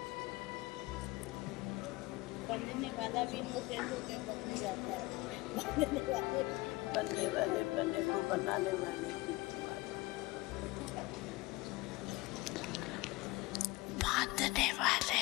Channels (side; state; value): right; quieter; 21.9 dB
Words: बनने वाला भी इनोसेंट होकर बन जाता है। बनने वाले बनने को बनाने वाले बांधने वाले